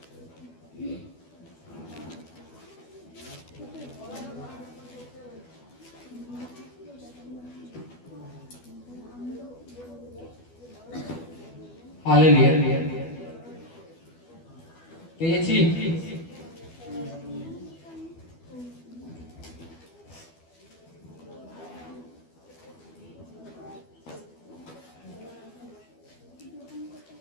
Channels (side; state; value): right; late; 12 ms